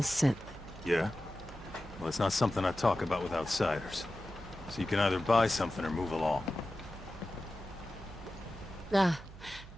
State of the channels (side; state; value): right; noise; hum, 16 dB below the sound